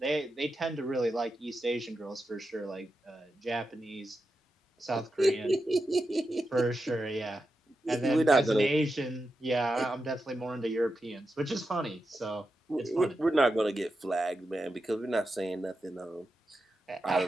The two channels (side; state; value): both; normal; correlation 0.89